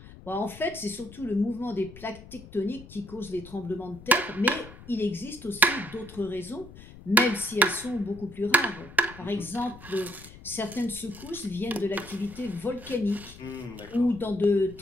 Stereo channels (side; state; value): left; noise; rumble, 17 dB below the sound